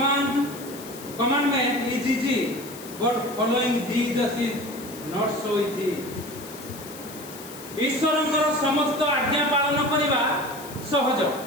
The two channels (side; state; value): left; noise; hiss, 15 dB below the sound